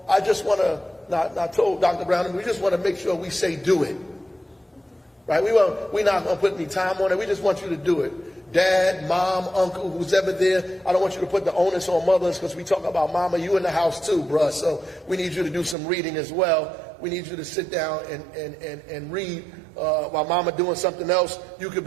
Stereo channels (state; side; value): drops out; left; at 15.8 s